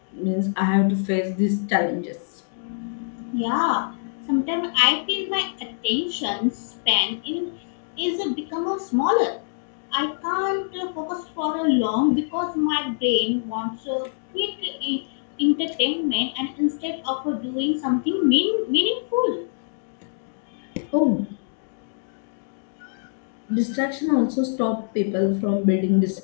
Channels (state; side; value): silent; right; digital silence